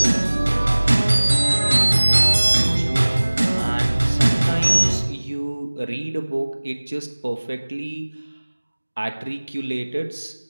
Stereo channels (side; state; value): both; inverted; correlation -1.00